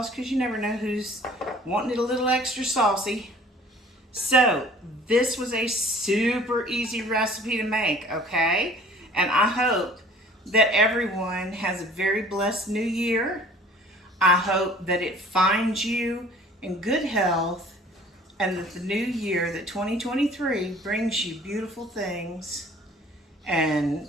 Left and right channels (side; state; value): both; normal; correlation 0.51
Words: because you never know who's wanting it a little extra saucy. So this was a super easy recipe to make, okay? And I hope that everyone has a very blessed new year. I hope that it finds you in good health, and that the new year, that 2023, brings you beautiful things and